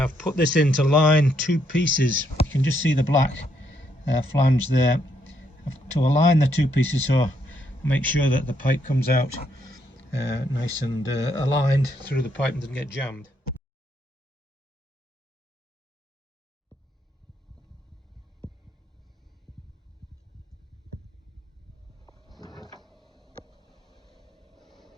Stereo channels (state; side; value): normal; both; correlation 0.74